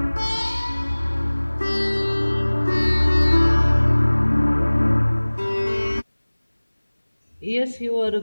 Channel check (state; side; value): inverted; both; correlation -1.00